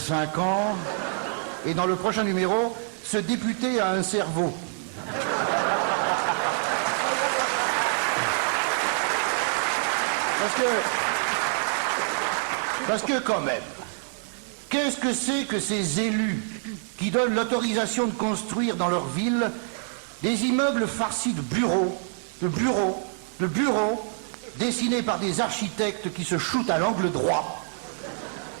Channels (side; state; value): left; silent; 61 dB below the other